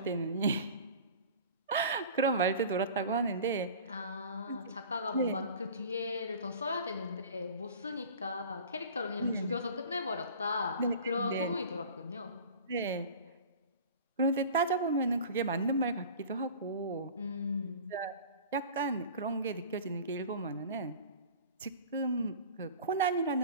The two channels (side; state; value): both; inverted; correlation -0.40